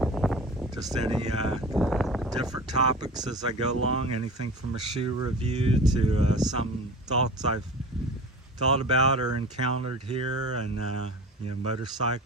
just any different topics as I go along, anything from a shoe review to some thoughts I've thought about or encountered here, and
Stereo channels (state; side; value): normal; both; correlation 0.36